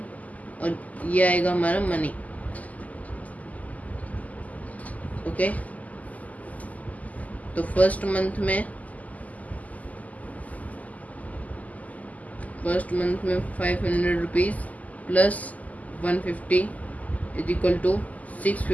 और ये आएगा हमारा मनी. ओके, तो फर्स्ट मंथ में 500 rupees plus 150 is equal to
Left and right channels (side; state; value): right; late; 0.076 ms